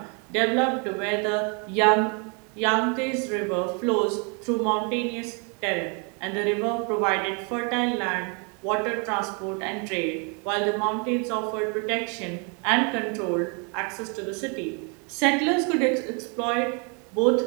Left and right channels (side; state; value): left; quieter; 35.4 dB